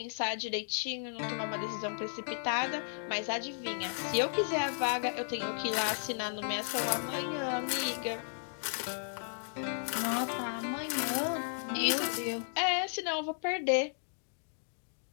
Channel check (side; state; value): right; silent; digital silence